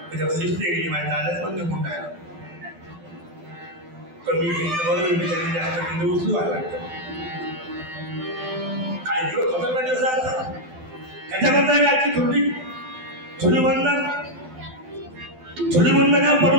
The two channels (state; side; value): late; left; 12 ms